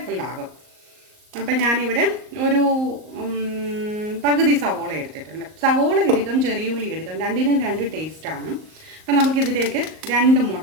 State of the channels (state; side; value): late; left; 38 ms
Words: ആകും. അപ്പം ഞാനിവിടെ ഒരു പകുതി സവോള എടുത്തിട്ടുണ്ട്. സവോള എടുക്കാം, ചെറിയ ഉള്ളി എടുക്കാം, രണ്ടിനും രണ്ട് ടേസ്റ്റാണ്. അപ്പം നമുക്കിതിലേക്ക് 2